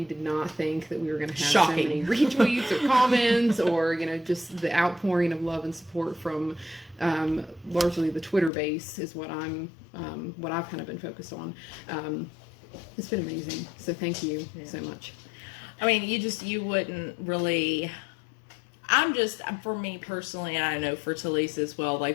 did not think that we were going to have so many retweets or comments or, just the outpouring of love and support from largely the Twitter base is what I've kind of been focused on. It's been amazing. So thank you so much. I mean, you wouldn't really... for me personally, and I know for Talise as well,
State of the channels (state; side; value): drops out; right; at 8.5 s